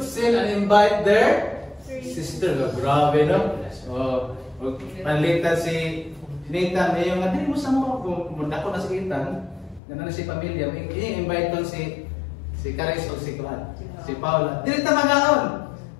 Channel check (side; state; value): right; drops out; at 9.8 s